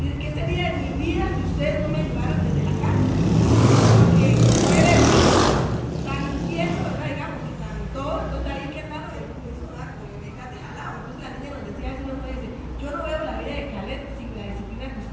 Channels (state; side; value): identical; both; correlation 1.00